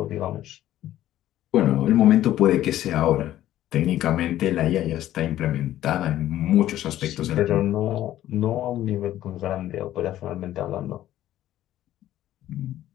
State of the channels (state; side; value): quieter; right; 13.2 dB